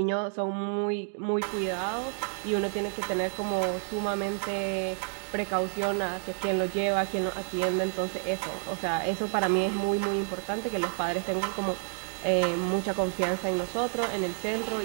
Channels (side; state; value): left; silent; 58 dB below the other